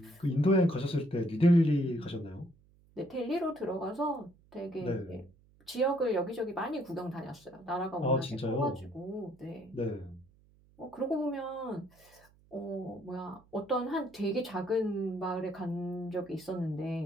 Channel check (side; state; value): right; noise; hum, 29 dB below the sound